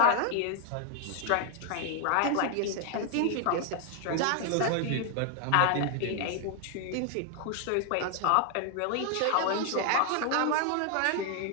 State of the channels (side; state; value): both; different; correlation 0.00